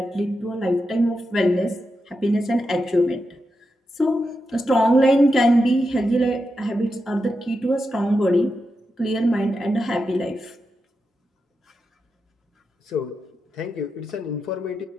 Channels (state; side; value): normal; both; correlation 0.88